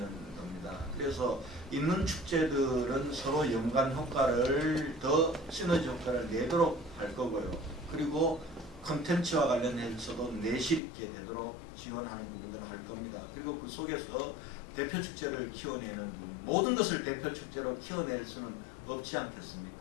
겁니다. 그래서 있는 축제들은 서로 연관 효과를 더 시너지 효과를 내도록 할 거고요. 그리고 컨텐츠와 관련해서도 내실 있게 되도록 지원하는 부분들을 할 겁니다. 그리고 그 속에서 대표 축제를 키워내는 부분, 모든 것을 대표 축제로 키워낼 수는 없지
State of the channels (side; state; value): right; drops out; at 10.8 s